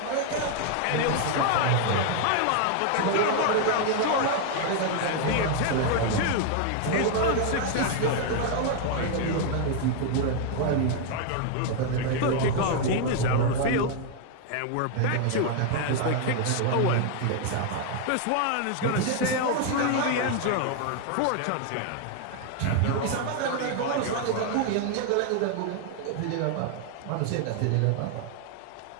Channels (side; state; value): both; different; correlation 0.00